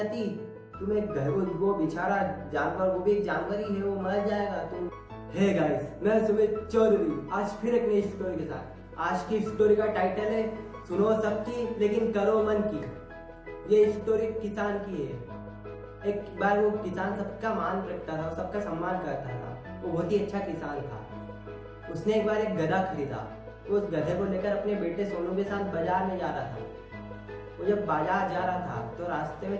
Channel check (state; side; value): identical; both; correlation 1.00